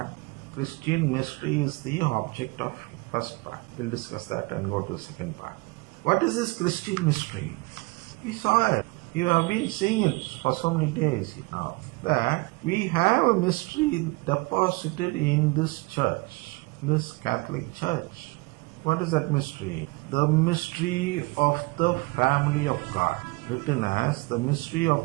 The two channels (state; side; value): quieter; left; 25.3 dB